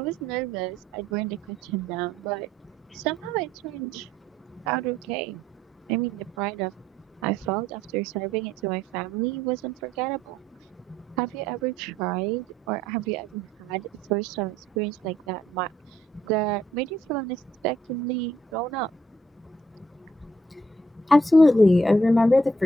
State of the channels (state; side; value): normal; both; correlation 0.69